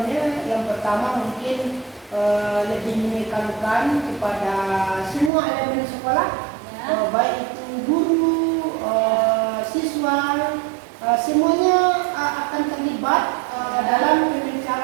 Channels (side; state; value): left; drops out; at 5.3 s